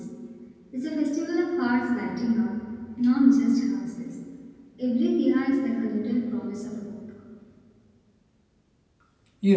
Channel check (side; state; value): both; identical; correlation 1.00